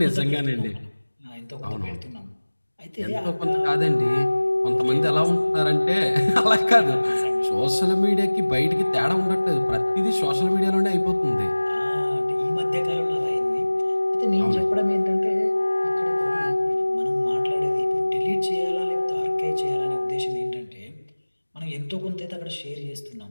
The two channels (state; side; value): inverted; both; correlation -1.00